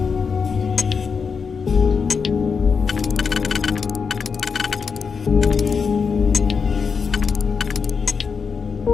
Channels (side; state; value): right; quieter; 5.7 dB